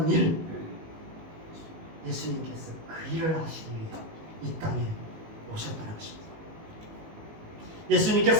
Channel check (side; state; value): left; late; 19 ms